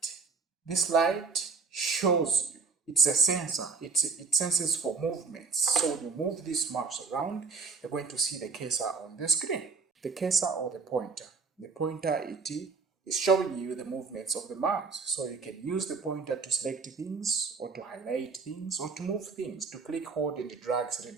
This light shows you, it's a sensor, it senses for movements. So when you move this mouse around, you're going to see the cursor on the screen. The cursor or the pointer. The pointer, it is showing you the movements of the mouse. So you can use the pointer to select things, or to highlight things, or to move things, to click, hold, and drag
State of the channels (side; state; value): left; quieter; 4.8 dB